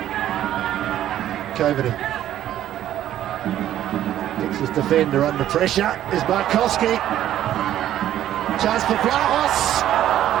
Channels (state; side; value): quieter; left; 12.1 dB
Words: Coveney. Gets his defender under pressure. Is Markowski. Chance for Vlahos.